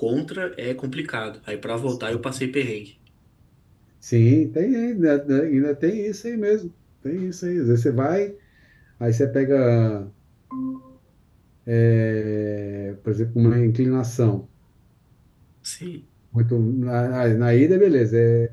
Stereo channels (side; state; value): both; identical; correlation 1.00